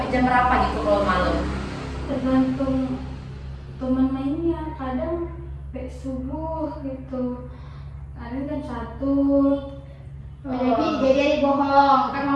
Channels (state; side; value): identical; both; correlation 1.00